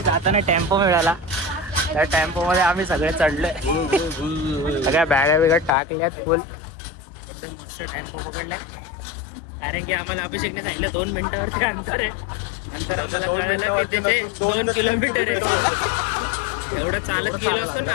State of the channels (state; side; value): drops out; right; at 5.8 s